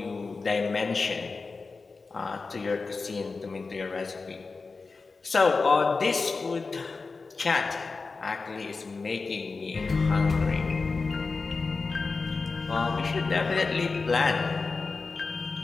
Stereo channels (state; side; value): quieter; right; 4.2 dB